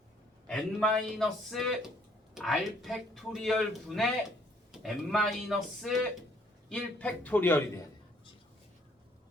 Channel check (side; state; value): both; normal; correlation 0.64